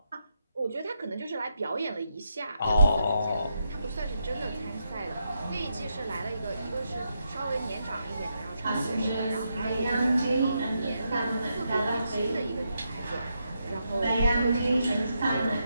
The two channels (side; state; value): both; inverted; correlation -0.82